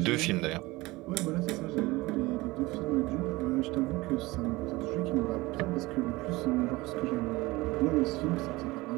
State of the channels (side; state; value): left; quieter; 21.1 dB